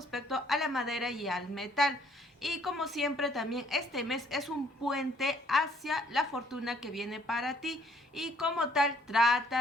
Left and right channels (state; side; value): normal; both; correlation 0.63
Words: a la madera y al metal. Y como siempre también este mes es un puente hacia la fortuna que viene para ti, y como tal